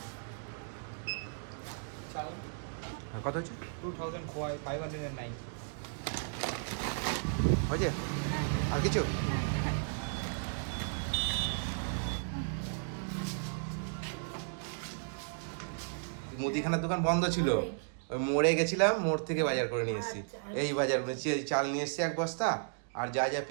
চাল হ্যাঁ কত হচ্ছে? 2509 হয়েছে? আর কিছু? মুদিখানার দোকান বন্ধ ছিল, ওই মোড়ে গেছিলাম, মোড় থেকে বাজার করে নিয়ে এসেছি। আচ্ছা। এই বাজার চাল নিয়ে এসেছি এক বস্তা, আর যা যা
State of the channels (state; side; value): silent; left; digital silence